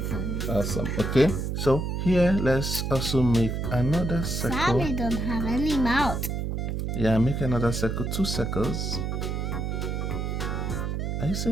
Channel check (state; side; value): noise; right; hum, 2 dB below the sound